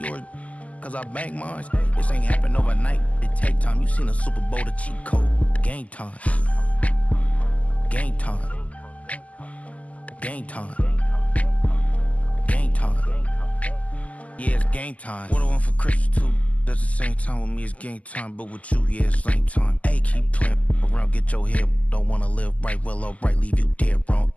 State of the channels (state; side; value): late; right; 0.071 ms